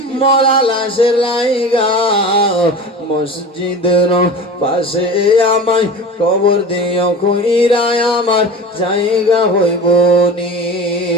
মরা লাশের লাইগা, মসজিদের পাশে আমায় কবর দিও কইরায় আমার জায়গা হইব নি।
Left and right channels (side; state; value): both; normal; correlation 0.34